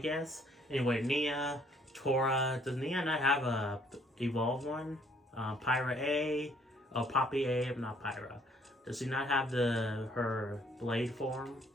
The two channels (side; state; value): both; normal; correlation 0.64